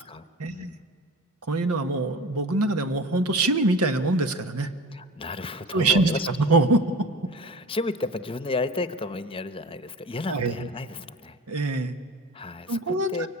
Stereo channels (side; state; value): both; normal; correlation 0.36